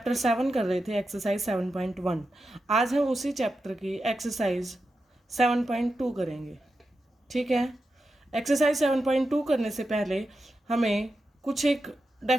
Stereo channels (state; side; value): normal; both; correlation 0.89